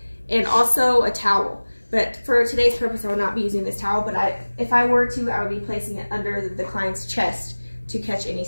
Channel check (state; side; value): inverted; both; correlation -1.00